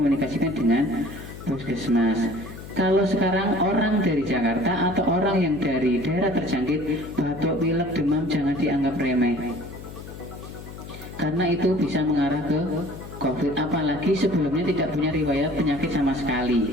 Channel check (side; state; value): left; noise; hum, 13 dB below the sound